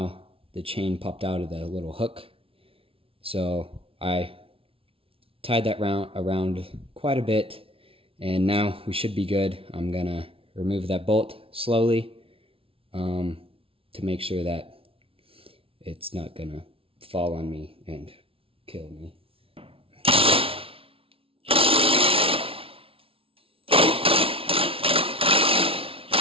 the chain popped out of the little hook. So I tied that around quite a bit, and now we should be good. I'm gonna remove that bolt slowly to make sure that it's not gonna fall on me and kill me.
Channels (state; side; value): late; left; 0.26 ms